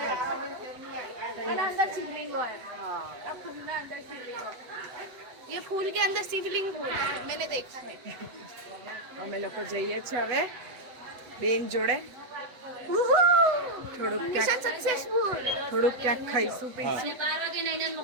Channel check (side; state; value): left; late; 8.0 ms